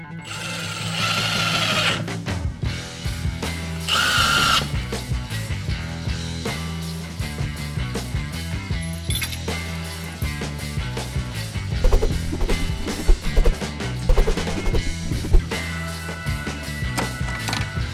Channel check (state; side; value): identical; both; correlation 1.00